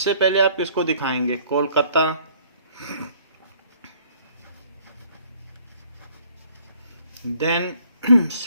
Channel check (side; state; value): both; inverted; correlation -0.59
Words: पहले आप किसको दिखाएंगे? कोलकाता, देन